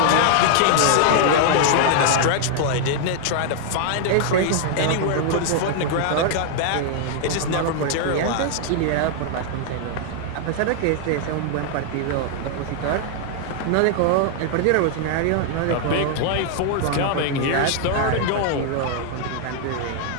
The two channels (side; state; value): both; different; correlation 0.00